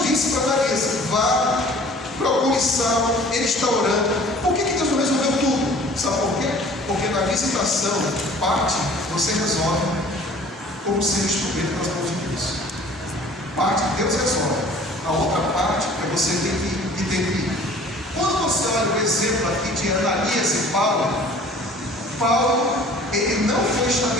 disse para Ananias: vá, procure Saulo, ele está orando. Por que Deus não resolveu tudo? Sabe por quê? Porque na visitação, parte você resolve como ser instrumento das mãos de Deus. Parte Deus resolve, a outra parte é você ter que ir. Quando você olha o exemplo aqui de Ananias e Paulo, ele não foi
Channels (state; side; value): normal; both; correlation 0.49